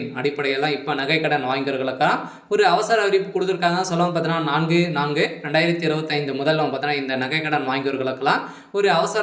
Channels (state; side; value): identical; both; correlation 1.00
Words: அடிப்படையெல்லாம் இப்போ நகைக்கடன் வாங்கியவர்களுக்காக ஒரு அவசர அறிவிப்பு கொடுத்துருக்காங்க. சொல்லவும் பார்த்தீங்கன்னா 4/4/2025 முதல்ல பார்த்தீங்கன்னா இந்த நகைக்கடன் வாங்கியவர்களுக்கெல்லாம் ஒரு